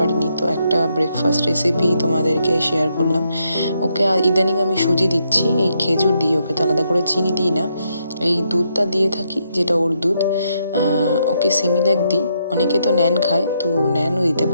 তো একটা ব্রেকফাস্ট রেসিপি তোমাদেরকে শেয়ার করলাম। ওকে ইদানিং আমি সুজি দিচ্ছি, এই খেজুর দিয়ে, ওকে তো আলাদা করে চিনি দিই না, এই দুধটা দিয়ে থাকি যেটা ওর দুধ। ওকে সিমিল্যাক দিই, অনেকে তো ন্যান খায়, তো ন্যানও দিতে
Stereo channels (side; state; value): both; inverted; correlation -0.78